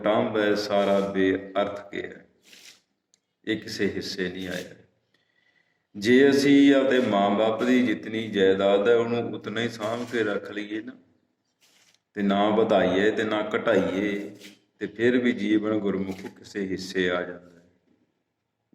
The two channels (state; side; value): identical; both; correlation 1.00